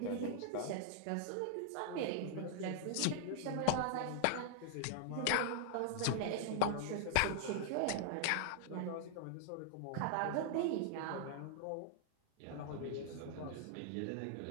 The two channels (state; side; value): different; both; correlation 0.00